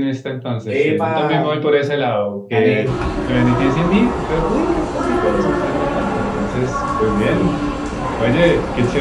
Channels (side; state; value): both; identical; correlation 1.00